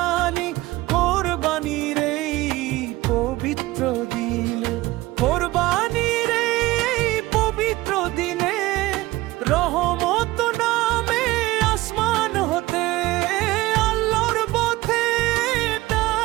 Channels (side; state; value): left; quieter; 18.7 dB